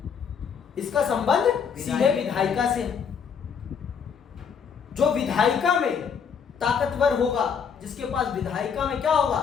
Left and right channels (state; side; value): quieter; right; 6.8 dB